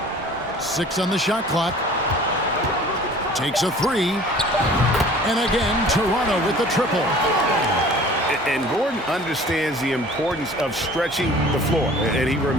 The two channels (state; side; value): normal; both; correlation 0.47